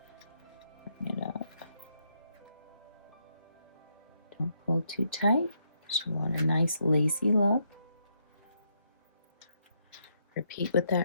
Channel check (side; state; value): both; inverted; correlation -0.77